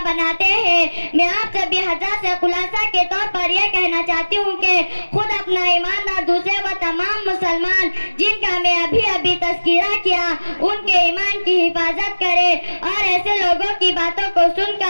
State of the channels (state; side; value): inverted; both; correlation -1.00